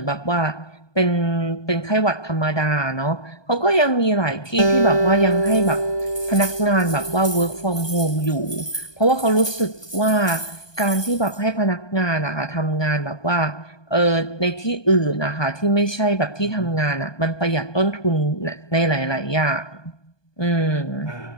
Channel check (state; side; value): late; right; 1.2 ms